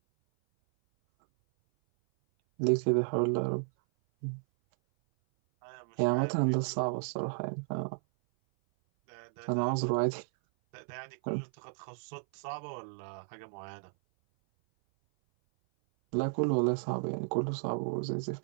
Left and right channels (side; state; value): left; silent; 56 dB below the other